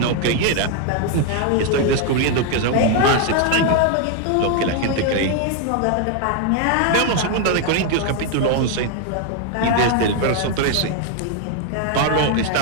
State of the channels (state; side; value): different; both; correlation 0.01